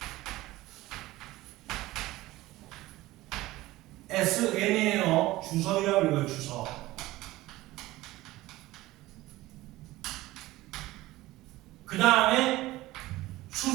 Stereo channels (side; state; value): left; quieter; 17.8 dB